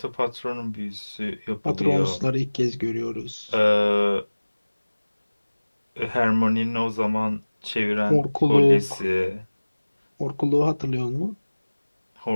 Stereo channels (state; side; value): inverted; both; correlation -1.00